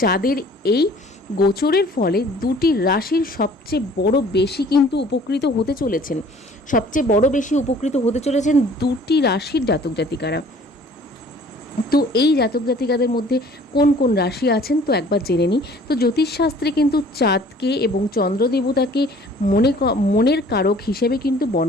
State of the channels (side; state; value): both; normal; correlation 0.52